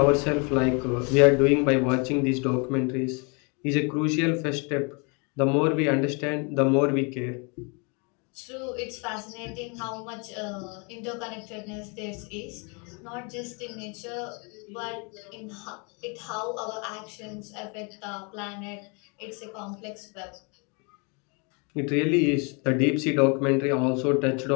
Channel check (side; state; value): right; quieter; 33.3 dB